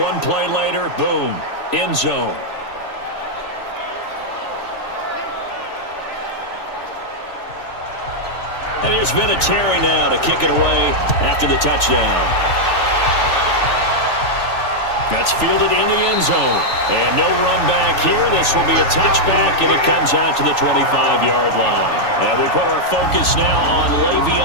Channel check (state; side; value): late; right; 3.4 ms